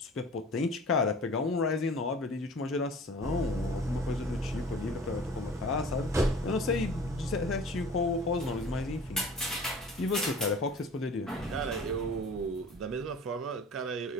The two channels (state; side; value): normal; both; correlation 0.43